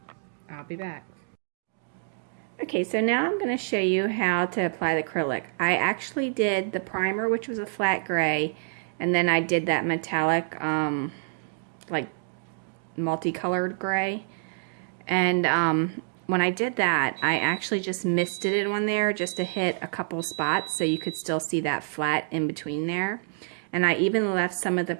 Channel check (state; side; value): silent; left; 60 dB below the other